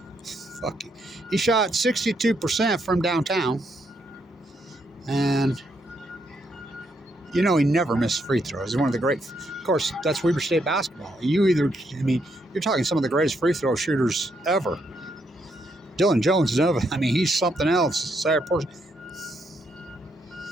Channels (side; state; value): both; normal; correlation 0.76